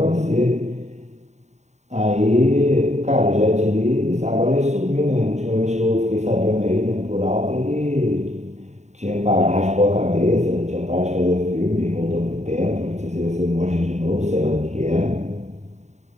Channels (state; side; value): late; left; 0.33 ms